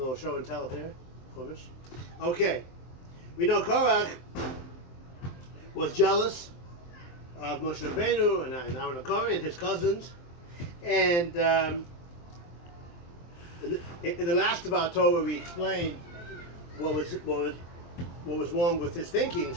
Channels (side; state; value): right; late; 23 ms